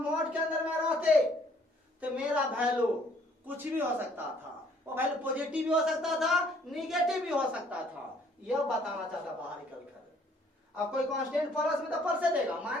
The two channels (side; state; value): both; normal; correlation 0.62